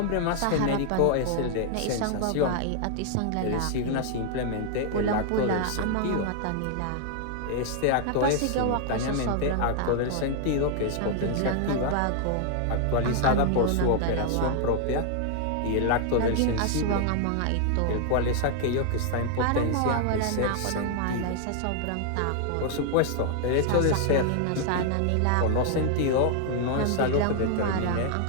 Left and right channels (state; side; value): different; both; correlation 0.00